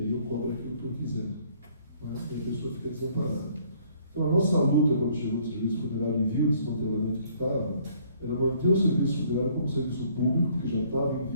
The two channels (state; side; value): inverted; both; correlation -0.62